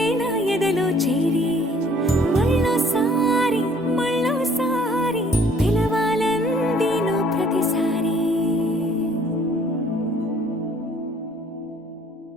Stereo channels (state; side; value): normal; both; correlation 0.58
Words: నా ఎదలో చేరి మళ్ళోసారి మళ్ళోసారి పిలవాలంది నువ్వు ప్రతిసారి